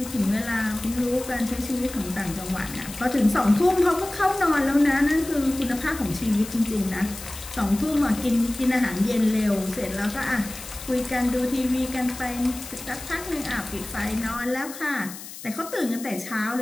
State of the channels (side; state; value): left; noise; hiss, 13 dB below the sound